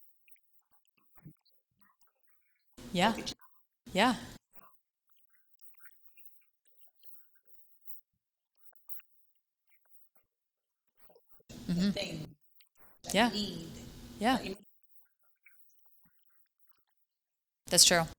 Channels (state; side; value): identical; both; correlation 1.00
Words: I've always been that person of journaling. Yeah. Go get your pen. Yeah. So, Riley, you identified a really great thing of you haven't found the right solution, the thing, the niche that Yeah. you need. Yeah. That you maybe don't you don't even realize you need it. Most people. That's true.